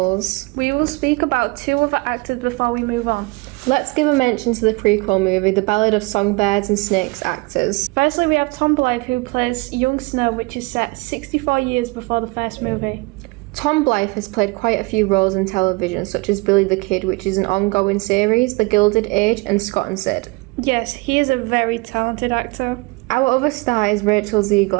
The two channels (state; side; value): quieter; left; 26.3 dB